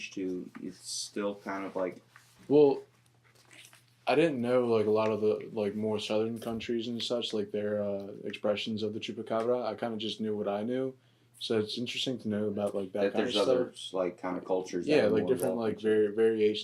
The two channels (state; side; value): identical; both; correlation 1.00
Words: to it's still kind of like? Well, I didn't know like a lot of the like more southern countries and such, like their expressions of the chupacabra. I kind of just knew what I knew, so it's interesting to know about like that kind there's of stuff. other like kind of cultures. Yeah, that like different like